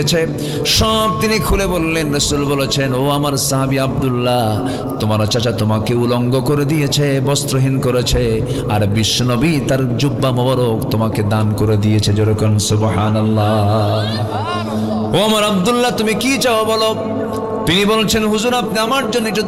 সব তিনি খুলে বললেন। রাসূল বলেছেন, ও আমার সাহাবী আব্দুল্লাহ, তোমার চাচা তোমাকে উলঙ্গ করে দিয়েছে, বস্ত্রহীন করেছে, আর বিশ্বনবী তার জুব্বা মোবারক তোমাকে দান করে দিয়েছে। যেরকম সুবহানাল্লাহ। ও আমার আব্দুল্লাহ, তুমি কি চাও বলো? তিনি বলছেন, হুজুর আপনি আমার জন্য একটু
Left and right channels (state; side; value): identical; both; correlation 1.00